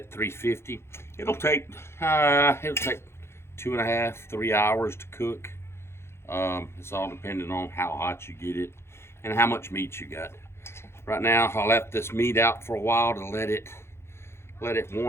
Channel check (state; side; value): late; right; 0.12 ms